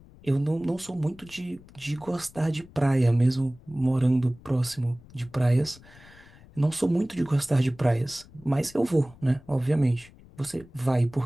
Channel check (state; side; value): noise; left; rumble, 23 dB below the sound